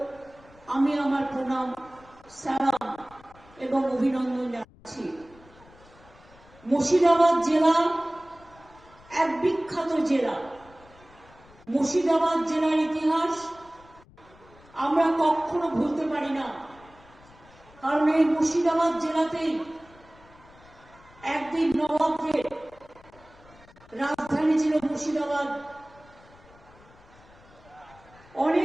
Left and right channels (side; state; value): left; noise; rumble, 25 dB below the sound